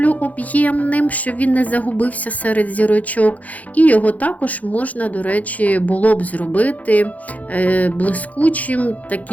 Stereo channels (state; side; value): late; right; 0.074 ms